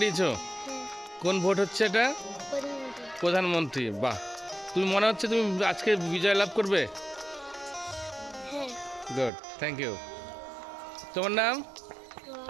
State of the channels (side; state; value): left; drops out; at 9.3 s